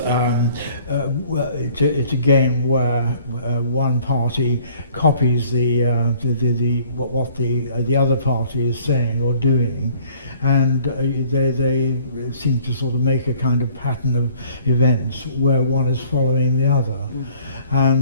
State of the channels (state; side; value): inverted; both; correlation -0.56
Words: it's a game where one party copies what the other party is saying or doing, and they seem to sort of make a kind of pattern of events where one is following the other.